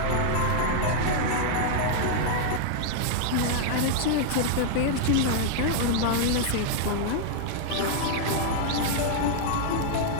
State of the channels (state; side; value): different; both; correlation -0.01